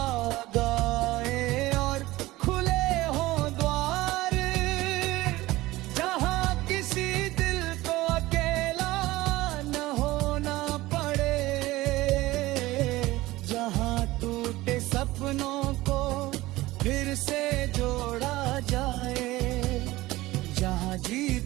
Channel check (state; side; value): quieter; left; 18.4 dB